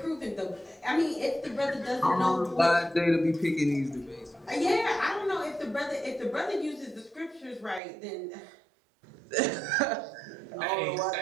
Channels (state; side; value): drops out; left; at 7.8 s